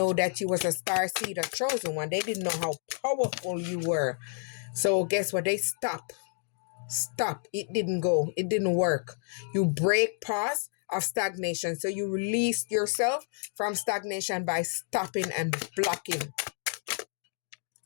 that you was a star seed, a chosen one. They didn't know how powerful you were. So guess what? They stop. It didn't go. It didn't work. You break pause of stagnation. So you release yourself from stagnation by stopping and blocking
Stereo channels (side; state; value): right; silent; 58 dB below the other